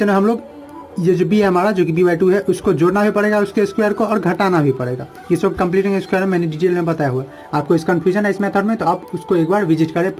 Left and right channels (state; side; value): identical; both; correlation 1.00